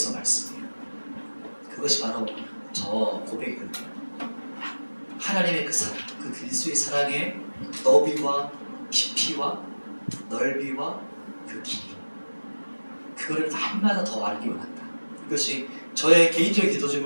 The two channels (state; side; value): inverted; both; correlation -1.00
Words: 말씀이에요. 그것이 바로 저 고백이거든요. 하나님의 그 사랑, 그 그리스도의 사랑의 너비와 깊이와 넓이와 그 길이, 그거를 날마다 더 알기 원한다. 이것이 저의 개인적인 기도